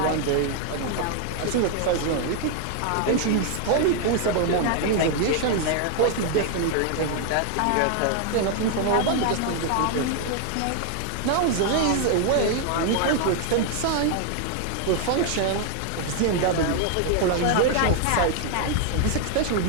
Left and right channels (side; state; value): both; different; correlation 0.00